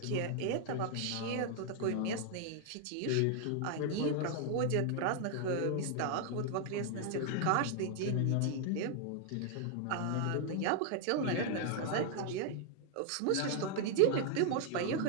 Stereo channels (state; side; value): different; both; correlation 0.00